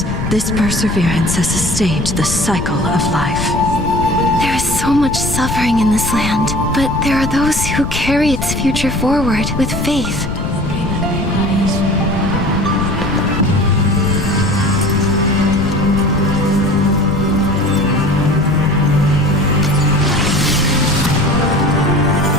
this perseverance has sustained the cycle of life. There is so much suffering in this land, but there are those who carry its future forward with faith.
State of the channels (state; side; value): noise; left; rumble, 5 dB below the sound